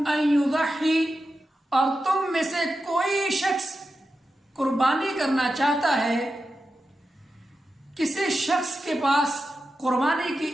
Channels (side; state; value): both; normal; correlation 0.90